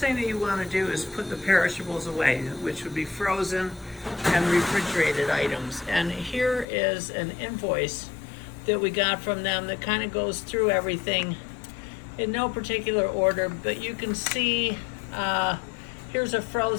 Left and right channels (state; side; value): drops out; right; at 6.7 s